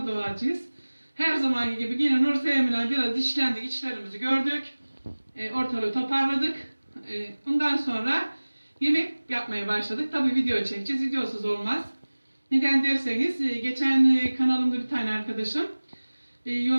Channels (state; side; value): inverted; both; correlation -1.00